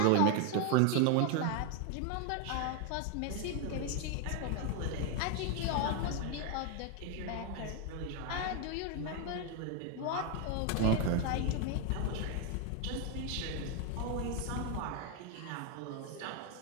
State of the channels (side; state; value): both; different; correlation 0.01